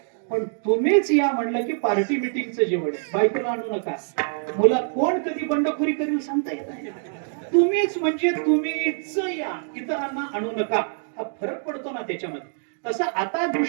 पण तुम्हीच या म्हणलं की पार्टी मिटिंगचं जेवण आहे. बायकोला आणू नका. मुला कोण कधी बंडखोरी करील सांगता येत नाही. तुम्हीच म्हणजे तुम्हीच या, इतरांना आणू नका. हा फरक पडतो ना त्याच्यामध्ये. तसं आता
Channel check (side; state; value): left; silent; digital silence